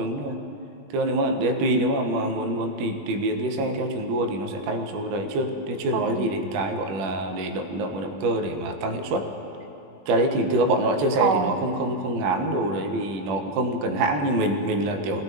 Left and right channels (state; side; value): late; left; 20 ms